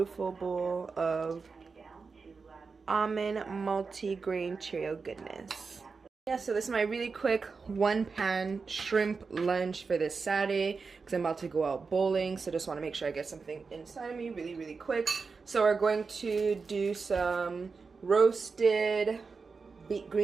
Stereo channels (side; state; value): left; quieter; 4.8 dB